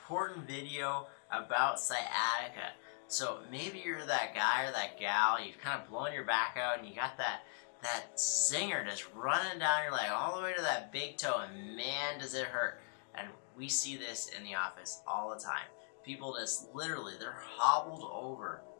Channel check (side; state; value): right; silent; 52 dB below the other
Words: video about sciatica. So maybe you're that guy or that gal, you've kind of blown your back out and you got that zinger just running down your leg all the way to that big toe, and man does it hurt. And we see this in the office all the time. People just literally, they're hobbled over.